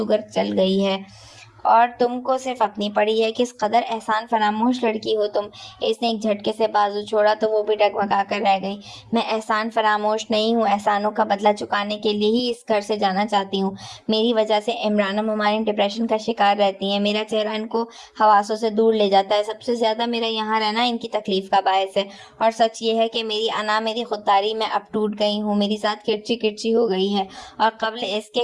چل گئی ہے، اور تم کو صرف اپنی پڑی ہے۔ کس قدر احسان فراموش لڑکی ہو تم۔ اس نے ایک جھٹکے سے بازو چھوڑا تو وہ بھی ڈگمگا کر رہ گئی۔ میں احسان فراموش نہیں ہوں، احسانوں کا بدلہ چکانے کے لیے ہی اس گھر سے جانا چاہتی ہوں۔ میری وجہ سے عمران و ممالین ڈپریشن کا شکار رہتی ہیں، میرا چہرہ ان کو حواسوں سے دور لے جاتا ہے۔ سب سے زیادہ میرا یہاں رہنا ان کی تکلیف کا باعث ہے، اور سچ یہ ہے کہ میری انا، میری خودداری میں اب ٹوٹ گئی ہوں، میری ذات کرچی کرچی ہو گئی ہے، اور قبل اس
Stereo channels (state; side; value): identical; both; correlation 1.00